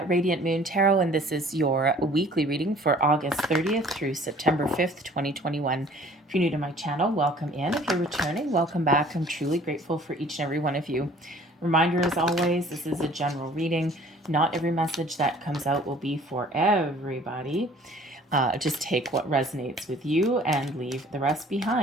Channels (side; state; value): both; normal; correlation 0.52